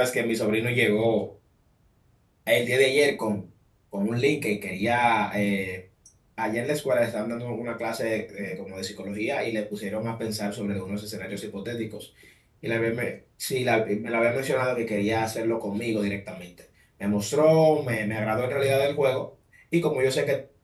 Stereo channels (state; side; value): identical; both; correlation 1.00